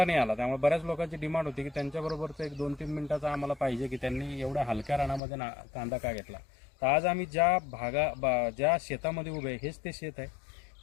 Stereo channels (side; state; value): right; drops out; at 5.2 s